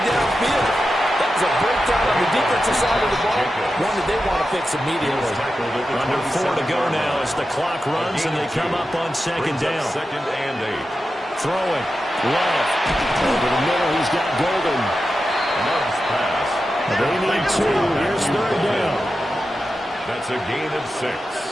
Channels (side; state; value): both; normal; correlation 0.91